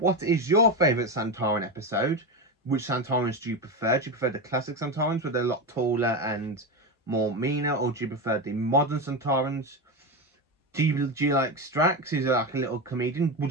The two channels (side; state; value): both; normal; correlation 0.16